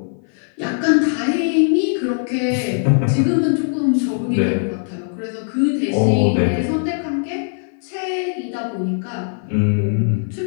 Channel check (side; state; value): right; silent; 56 dB below the other